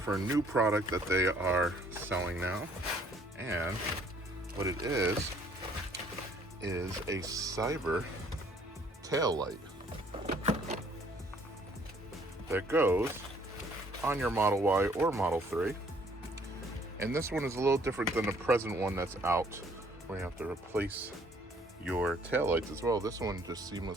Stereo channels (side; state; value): both; normal; correlation 0.61